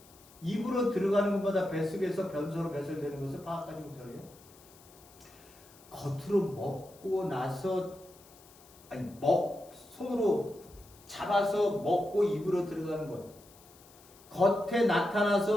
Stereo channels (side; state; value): left; noise; hiss, 24 dB below the sound